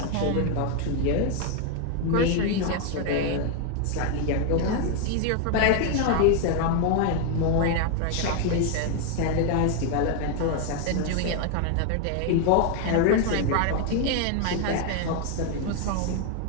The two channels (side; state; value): both; different; correlation 0.01